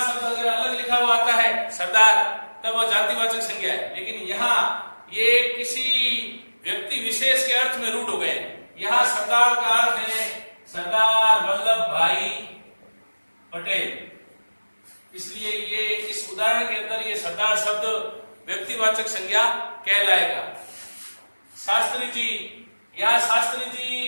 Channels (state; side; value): inverted; both; correlation -1.00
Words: अगर अलग लिखा हुआ आता है सरदार, तब वह जातिवाचक संज्ञा है, लेकिन यहाँ ये किसी व्यक्ति विशेष के अर्थ में रूढ़ हो गए। यहाँ सरदार का अर्थ है सरदार वल्लभ भाई पटेल, इसलिए ये इस उदाहरण के अंदर ये सरदार शब्द व्यक्तिवाचक संज्ञा कहलाएगा। शास्त्री जी, यहाँ शास्त्री